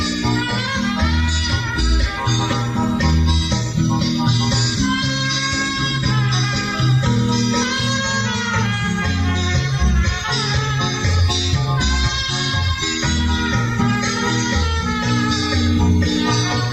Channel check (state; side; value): identical; both; correlation 1.00